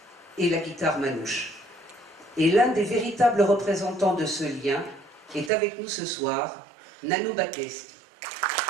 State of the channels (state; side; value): drops out; left; at 5.5 s